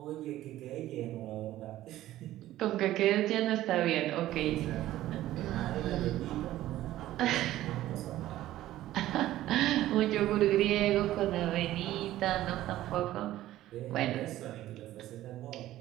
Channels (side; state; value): left; quieter; 14.5 dB